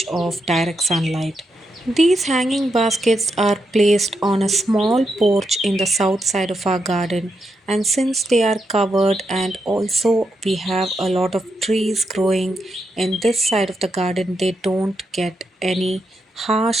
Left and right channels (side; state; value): both; normal; correlation 0.83